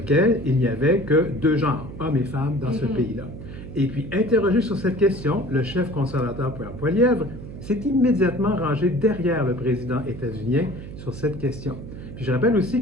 il n'y avait que deux genres, hommes et femmes, dans ce pays-là. Et puis, interrogé sur cette question, le chef conservateur Pierre Poilievre s'est immédiatement rangé derrière le président états-unien sur cette question. Puis je rappelle aussi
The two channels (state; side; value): noise; right; hum, 12 dB below the sound